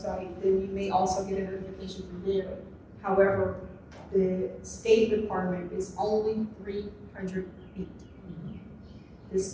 then you may also get a notification from there. However, the state requirement is only 300 feet. The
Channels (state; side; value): identical; both; correlation 1.00